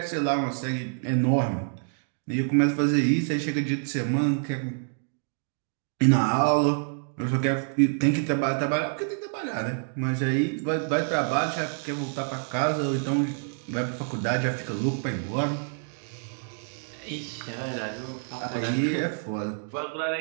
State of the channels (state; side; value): silent; left; digital silence